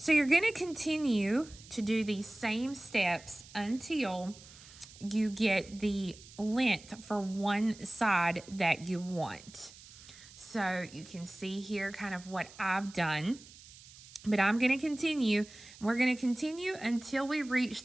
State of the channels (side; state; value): right; noise; hiss, 20 dB below the sound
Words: you're going to continue to do these same steps until you get the length for one side that you want. So you can see here kind of what I've done. But I'm going to continue. We're going to continue until we reach